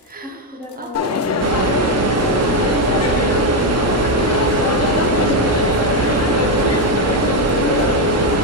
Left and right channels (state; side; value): normal; both; correlation 0.05